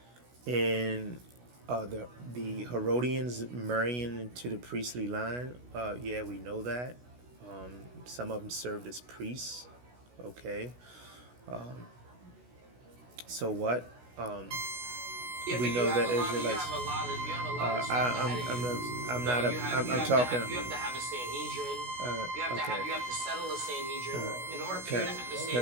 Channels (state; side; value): late; left; 16 ms